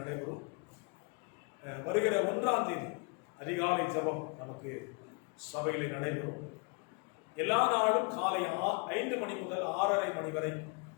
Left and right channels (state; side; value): quieter; right; 33.9 dB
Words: நடைபெறும். வருகிற 1ஆம் தேதி அதிகாலை ஜெபம் நமக்கு சபையில் நடைபெறும். எல்லா நாளும் காலை 5 மணி முதல் 6:30 மணி வரை